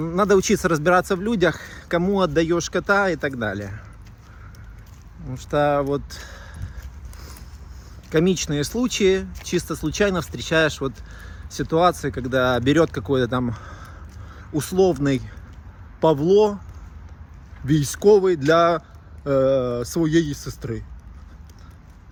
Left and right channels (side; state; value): both; identical; correlation 1.00